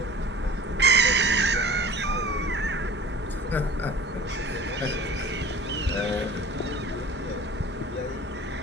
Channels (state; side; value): normal; both; correlation 0.43